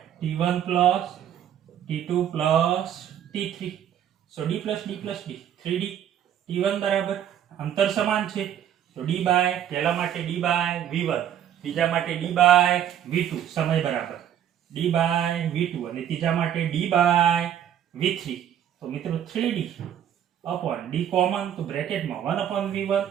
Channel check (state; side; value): quieter; left; 10.1 dB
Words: t1 plus t2 plus t3. સો d plus d plus d 3d. t1 બરાબર અંતર સમાન છે તો d બાય પહેલા માટે d બાય v1, બીજા માટે d બાય v2. સમય બરાબર d બાય v2 અને ત્રીજા માટે d બાય v3. તો મિત્રો 3d upon d કોમન તો બ્રેકેટમાં 1/v1